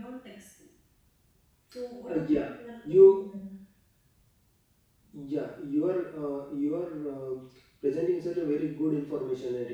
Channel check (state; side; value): identical; both; correlation 1.00